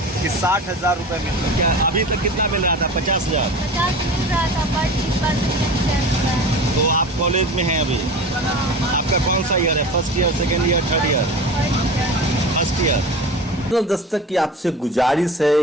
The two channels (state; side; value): normal; both; correlation 0.34